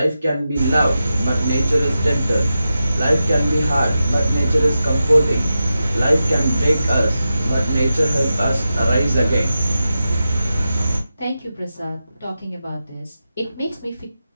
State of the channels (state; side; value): inverted; both; correlation -0.91